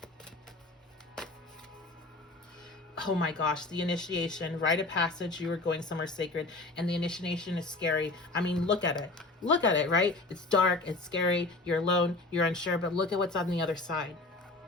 Oh my gosh, the initiation, rite of passage, you are going somewhere sacred, and the initiation is scary. I mean, look at it. Look at it, right? It's dark, it's scary, you're alone, you're unsure, but look at what's on the other side.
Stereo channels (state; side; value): quieter; right; 3.2 dB